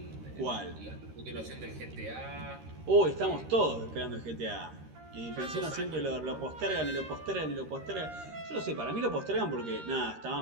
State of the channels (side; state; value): left; late; 13 ms